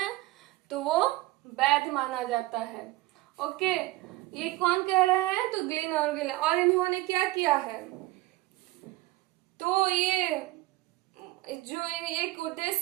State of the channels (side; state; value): left; quieter; 18.9 dB